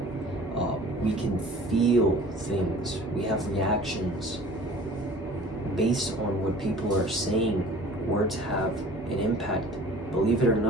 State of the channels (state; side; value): normal; both; correlation 0.46